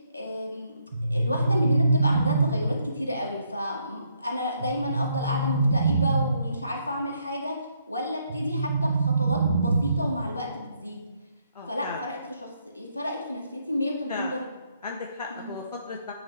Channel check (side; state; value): both; inverted; correlation -0.73